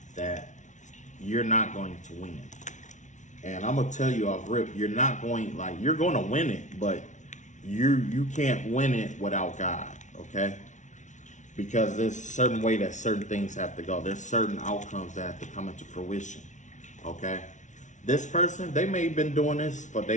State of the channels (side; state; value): right; late; 0.36 ms